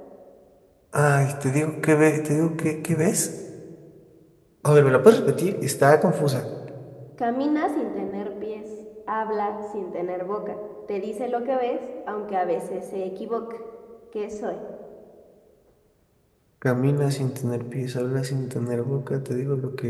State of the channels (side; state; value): both; identical; correlation 1.00